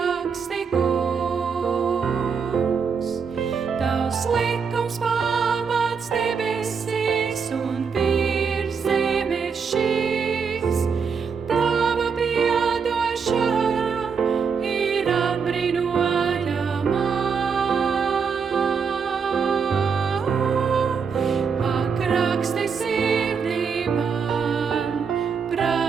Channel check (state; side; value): quieter; left; 6.0 dB